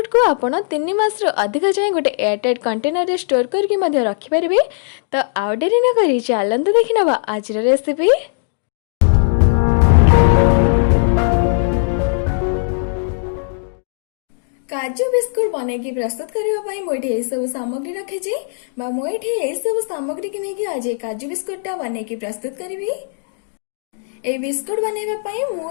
को आपण 3 मास अधिक जाए गोटे एयरटाइट कंटेनर स्टोर करके रखिपारे। तो आउ डेरी न करी चलते देखी नवा आज रेसिपी। काजू बिस्कुट बन की प्रस्तुत करने मुझे सब सामग्री रखी मुझे सब सामग्री की नहीं आज काजू बिस्कुटा बन की प्रस्तुत करी। ए बिस्कुट बनवाई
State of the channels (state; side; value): silent; right; digital silence